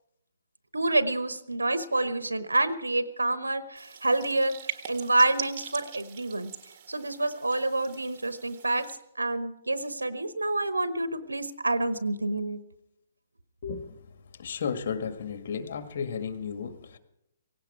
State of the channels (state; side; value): inverted; both; correlation -0.91